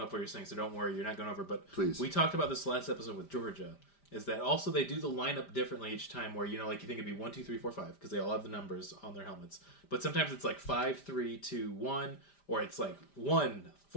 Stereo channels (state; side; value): late; right; 5.0 ms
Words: what you're saying, so don't worry, you're not going over. But please. We talked about this last episode with Georgia. Is that also they do the lineup differently each time where, you know, like you think it'd be 1, 2, 3, 4, 5 because they all have the numbers on their helmets. But sometimes it's like 5, 3, 2, 1 or it's like 1,